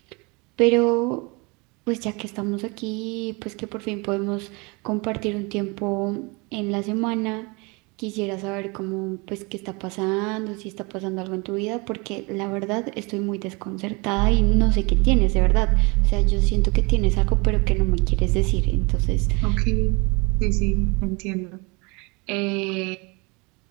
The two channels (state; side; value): quieter; left; 28.4 dB